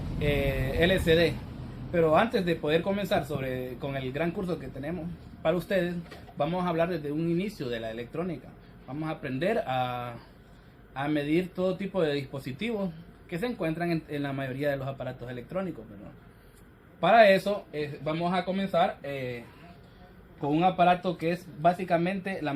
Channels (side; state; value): both; identical; correlation 1.00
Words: LCD. Pero antes de poder comenzar con el gran curso que tenemos para ustedes, vamos a hablar desde un inicio de la electrónica. Vamos a aprender a medir todo tipo de dispositivos que se encuentran en la mayoría de los aparatos electrónicos, ¿verdad? Para eso vamos a comenzar con un aparato que es básicamente la